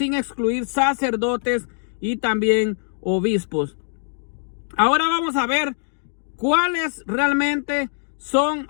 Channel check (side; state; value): right; silent; digital silence